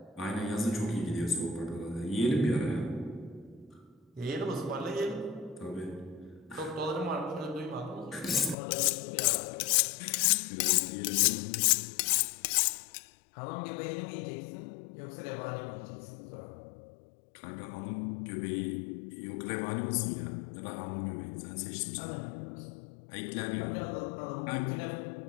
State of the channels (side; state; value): right; drops out; at 8.6 s